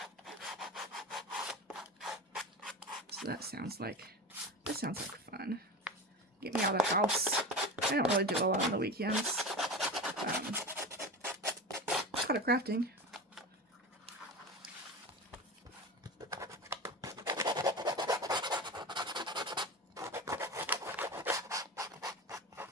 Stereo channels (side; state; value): both; normal; correlation 0.26